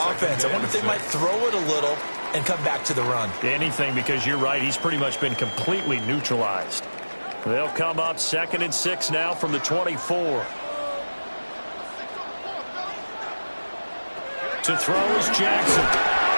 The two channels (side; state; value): both; inverted; correlation -1.00